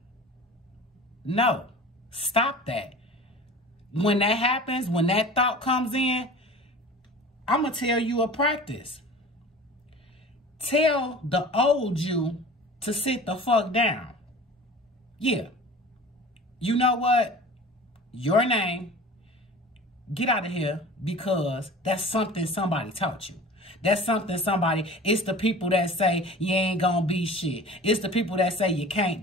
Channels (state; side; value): normal; both; correlation 0.40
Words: No, stop that. When that happens, when that thought comes in, I'm going to tell you a practice. Tell the old you to sit the fuck down. Yeah. You know what? Your name. Get out of here, because that's something somebody taught you. That's something it's the people that say you ain't gonna be shit. It's the people that say you can't